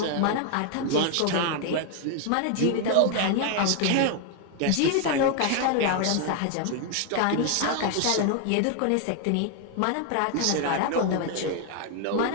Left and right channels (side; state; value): both; different; correlation 0.01